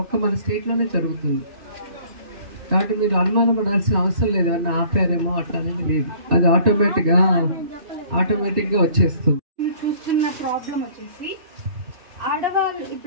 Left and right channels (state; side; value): late; left; 2.7 ms